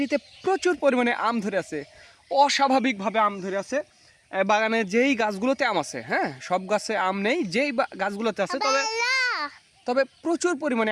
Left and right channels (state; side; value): identical; both; correlation 1.00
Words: প্রচুর পরিমাণে আম ধরে আছে, অস্বাভাবিকভাবে আম ধরে আছে। বাগানে যেই গাছগুলোতে আম আছে, হ্যাঁ, সব গাছে আম নেই, যেই গাছগুলোতে আছে তবে প্রচুর